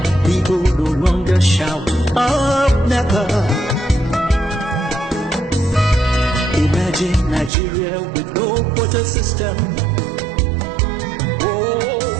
People no longer shout up never. Imagine Nigeria with no quota system. Oh,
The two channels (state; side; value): drops out; left; at 7.5 s